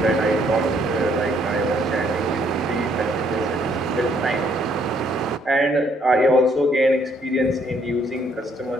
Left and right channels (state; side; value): normal; both; correlation 0.68